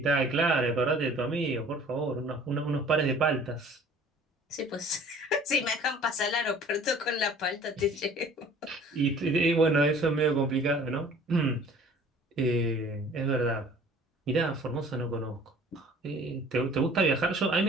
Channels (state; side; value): normal; both; correlation 0.50